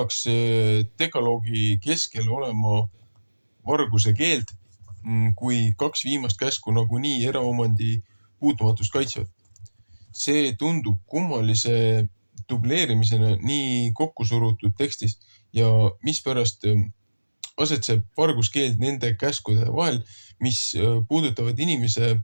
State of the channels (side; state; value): both; inverted; correlation -1.00